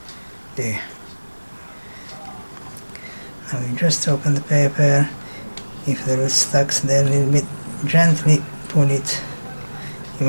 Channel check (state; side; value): inverted; both; correlation -1.00